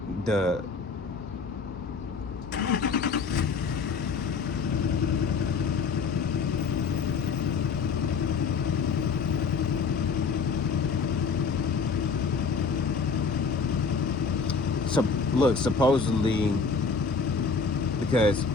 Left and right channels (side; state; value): right; quieter; 5.0 dB